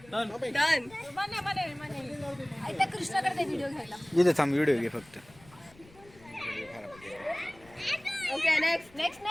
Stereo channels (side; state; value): left; noise; rumble, 25 dB below the sound